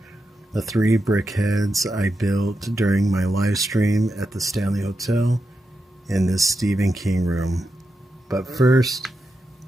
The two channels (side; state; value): both; normal; correlation 0.88